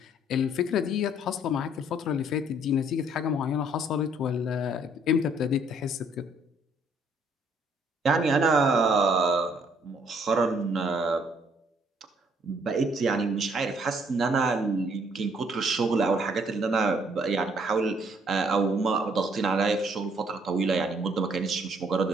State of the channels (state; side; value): normal; both; correlation 0.65